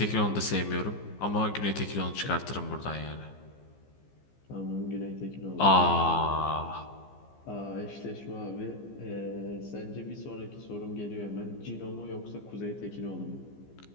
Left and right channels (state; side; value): late; right; 15 ms